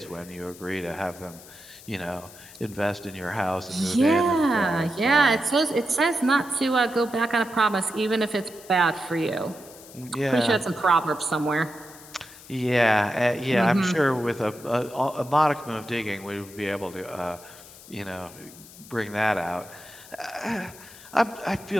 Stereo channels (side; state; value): left; noise; hiss, 19 dB below the sound